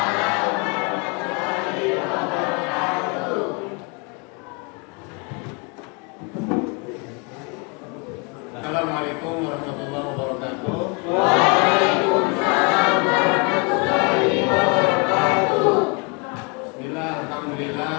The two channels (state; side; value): quieter; right; 32.9 dB